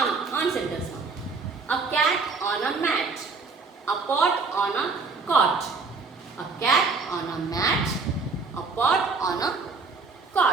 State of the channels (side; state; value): left; quieter; 4.3 dB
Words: sentence. A cat on a mat, a pot on a cot, a cat on a mat, a pot on a